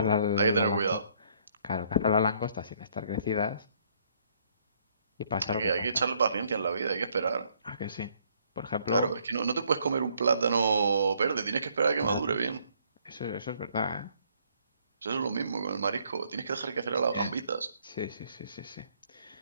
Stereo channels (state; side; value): inverted; both; correlation -0.66